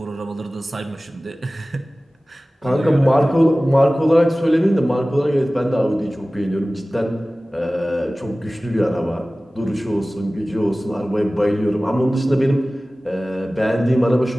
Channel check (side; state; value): both; normal; correlation 0.97